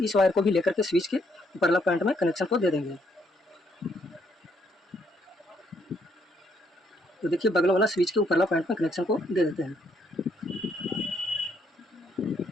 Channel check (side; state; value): both; normal; correlation 0.72